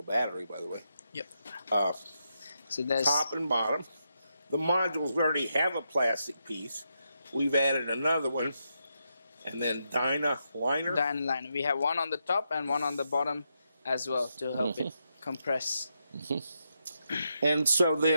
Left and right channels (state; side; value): inverted; both; correlation -0.83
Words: battery, by the way. Yep. So there's top and bottom. The modules already have a plastic piece. We've added another one. And then Dynaliner. Dynaliner. We have one on the top and one on the bottom as well to help it compress. And so